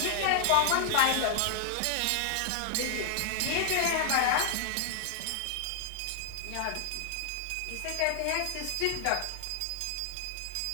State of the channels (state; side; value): different; both; correlation 0.00